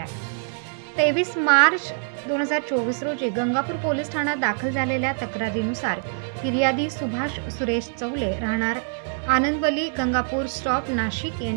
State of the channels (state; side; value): silent; left; 62 dB below the other